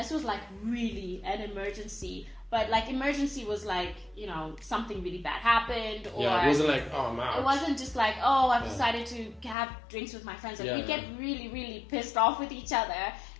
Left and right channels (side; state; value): right; drops out; at 9.6 s